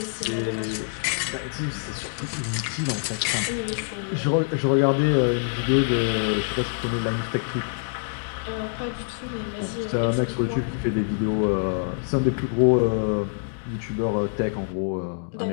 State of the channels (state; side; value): silent; right; digital silence